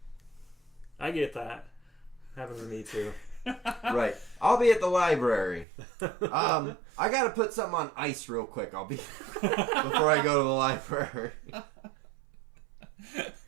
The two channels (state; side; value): drops out; left; at 5.7 s